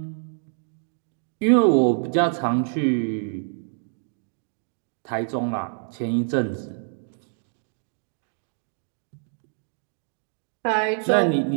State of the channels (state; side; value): silent; left; digital silence